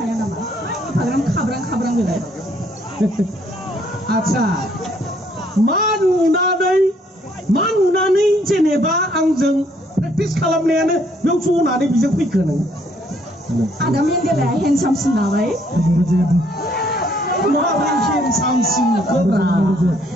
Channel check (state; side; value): normal; both; correlation 0.67